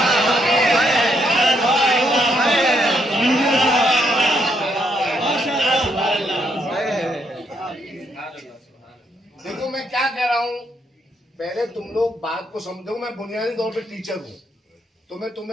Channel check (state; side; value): normal; both; correlation 0.75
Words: देखो मैं क्या कह रहा हूं, पहले तुम लोग बात को समझो। मैं बुनियादी तौर पे टीचर हूं, तो मैं